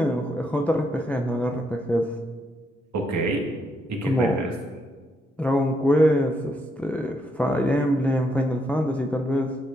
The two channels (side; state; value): both; normal; correlation 0.77